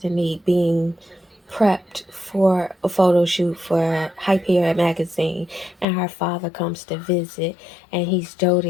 being prepped for a photo shoot for Hyperion magazine, and her father comes to visit, and he's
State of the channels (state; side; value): drops out; right; at 5.9 s